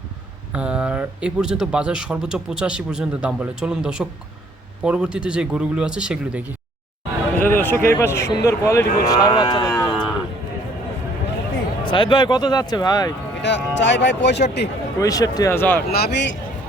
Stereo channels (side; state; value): both; normal; correlation 0.60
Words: আর এই পর্যন্ত বাজার সর্বোচ্চ 85 পর্যন্ত দাম বলে। চলুন দর্শক, পরবর্তীতে যে গরুগুলো আছে সেগুলো দেখি। দর্শক, এই পাশে সুন্দর কোয়ালিটি সার বাচ্চা দেখতে পাচ্ছি। সাইদ ভাই, কত যাচ্ছে ভাই? এটা চাই ভাই 65,000। নাভি